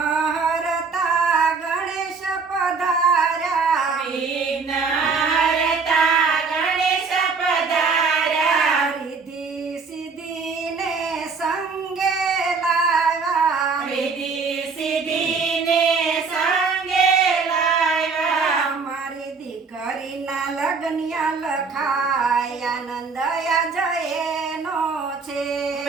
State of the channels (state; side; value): quieter; left; 4.9 dB